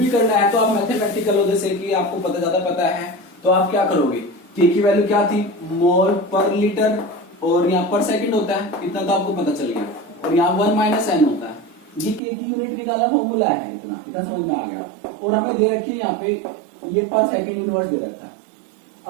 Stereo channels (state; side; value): drops out; left; at 12.2 s